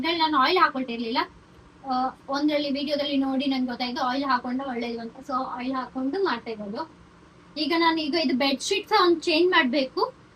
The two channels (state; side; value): identical; both; correlation 1.00